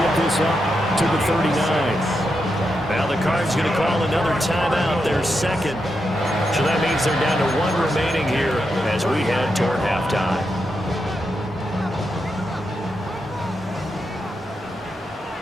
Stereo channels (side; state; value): both; normal; correlation 0.85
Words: get this up to the 39. Now the Cards going to call another timeout, their 2nd. So that means they're down to 1 remaining here as we head toward halftime.